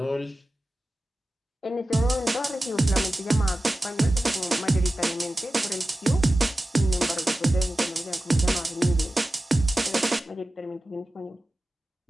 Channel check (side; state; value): both; normal; correlation 0.95